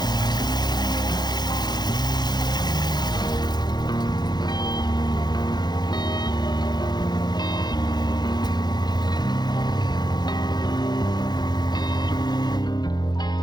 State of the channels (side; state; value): right; late; 0.20 ms